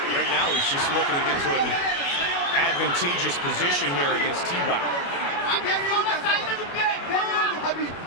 Right now he's just looking to get to an advantageous position here against T-Bow.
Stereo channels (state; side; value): late; right; 29 ms